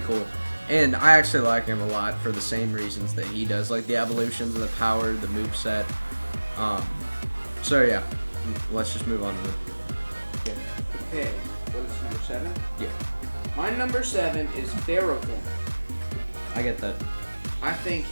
And I actually like him a lot for the same reasons that he does, like the evolutions of the power, the moveset. So yeah, let's just move on to the. Okay, what is number 7? Yeah, My number 7 is Ferrothorn. I get that. I think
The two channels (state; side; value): inverted; both; correlation -1.00